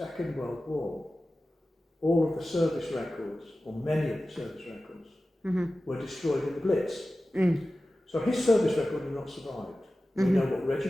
World War, all of the service records, or many of the service records, were destroyed in the Blitz. So his service record has not survived. We know what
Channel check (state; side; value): normal; both; correlation 0.95